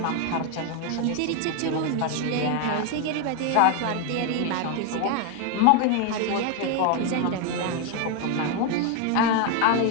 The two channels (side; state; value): both; different; correlation 0.01